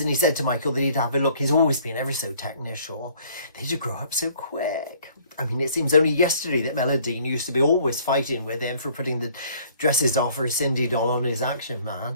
he said to Michael that he'd have a look. He's always been ever so technical. They just grow up so quick. I mean, it seems only yesterday that Melodine used to be always fighting with him for putting the dresses off her Cindy doll on his Action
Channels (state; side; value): inverted; both; correlation -0.58